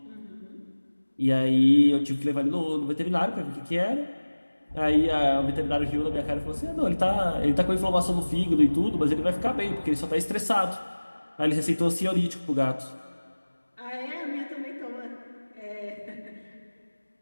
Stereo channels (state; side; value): inverted; both; correlation -1.00